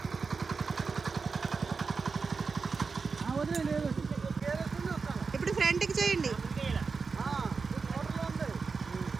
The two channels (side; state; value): left; quieter; 4.8 dB